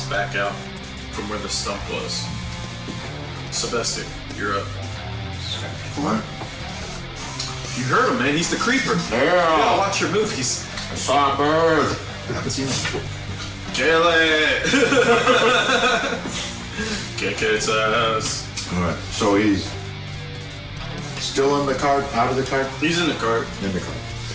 back out from where the stump was. Sylvester, you're up. What? You heard him, man. He's the creeper. Yeah, watch your movies. I saw a bird. I haven't seen him. Kill it! Kick its ass. Alright, so he's still in the cart, out of the cart? He's in the cart. In the cart.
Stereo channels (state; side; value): identical; both; correlation 1.00